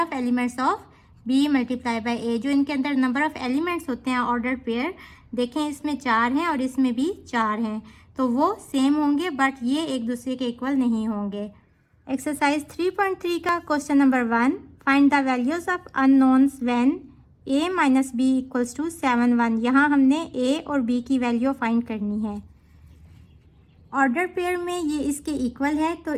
elements of b multiply by a। जो इनके अंदर नंबर ऑफ एलिमेंट्स होते हैं ऑर्डर पेयर, देखें इसमें 4 हैं और इसमें भी 4 हैं, तो वो सेम होंगे बट ये एक दूसरे के इक्वल नहीं होंगे। एक्सरसाइज 3.3 का question number 1, find the values of unknowns when a minus B equals to 7 1। यहाँ हमने a और b की वैल्यू फाइंड करनी है। ऑर्डर पेयर में ये इसके इक्वल है तो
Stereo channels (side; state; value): both; identical; correlation 1.00